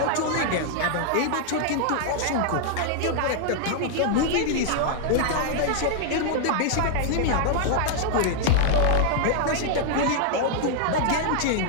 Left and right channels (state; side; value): different; both; correlation -0.01